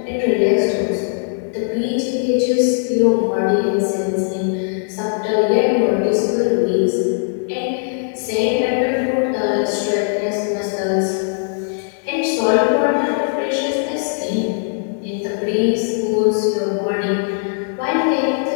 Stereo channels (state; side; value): silent; right; 66 dB below the other